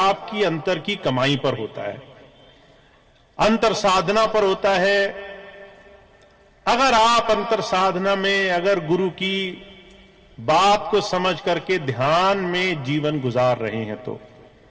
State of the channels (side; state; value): both; identical; correlation 1.00